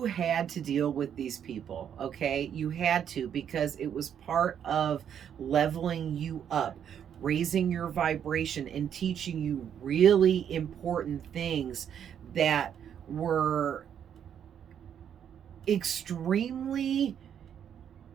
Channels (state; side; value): quieter; left; 8.8 dB